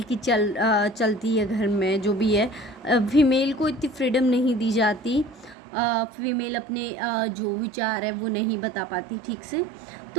की चलती है घर में जो भी है, फीमेल को इतनी फ्रीडम नहीं दी जाती, फीमेल अपने जो विचार है वो नहीं बता पाती ठीक से।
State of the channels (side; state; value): left; drops out; at 5.6 s